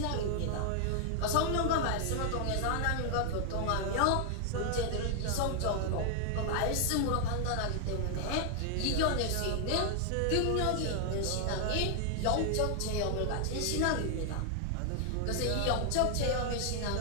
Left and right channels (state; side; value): different; both; correlation 0.00